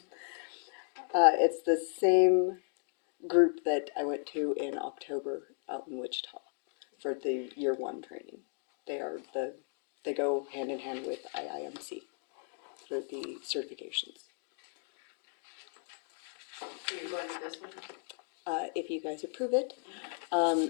It's the same group that I went to in October out in Wichita for the year one training. They go hand in hand with IIMC for the certifications. So you're going to this one? If you guys approve it.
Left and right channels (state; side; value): silent; right; 55 dB below the other